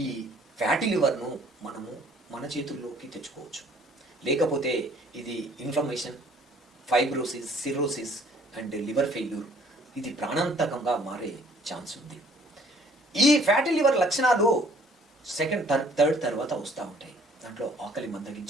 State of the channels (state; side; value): normal; both; correlation 0.58